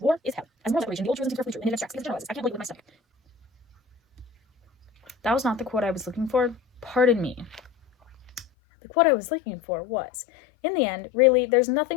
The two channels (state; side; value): drops out; right; at 8.5 s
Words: is hell. As moral separation, the old truism is carefully true, and it abstracts against generalizes. I can't believe it with my stomach." That was not the quote I was looking for. Pardon me. The quote I was looking for was, in the end, really, there's